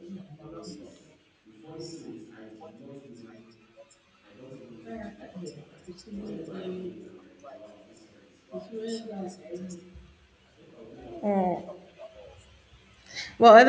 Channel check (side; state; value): both; identical; correlation 1.00